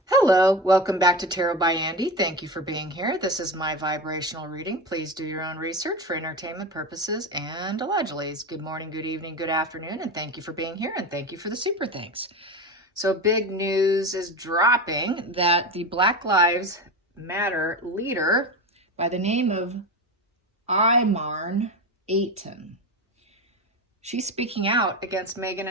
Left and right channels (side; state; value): both; normal; correlation 0.23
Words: Hello, welcome back to Tarot by Andy. Thank you for being here. This is my vibrational reading. Please do your own research for entertainment purposes and allegedly. Good morning, good evening, good afternoon, and thank you for being here, and thank you for the super thanks. So big news is dropping that the Black Lives Matter leader by the name of Imarn Ayton, she's speaking out against Meghan